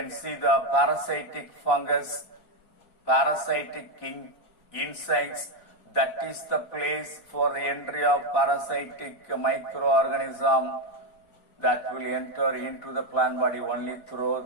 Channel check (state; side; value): late; right; 4.6 ms